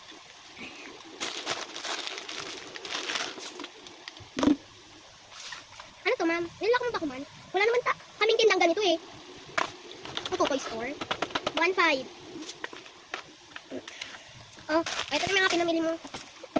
Ano to, ma'am? Nilala ko mo ba ko, man? Wala naman kaming tindang ganito, eh. Ito, toy store. 1.5. Oh, ito na mga pinamili mo.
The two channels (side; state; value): both; identical; correlation 1.00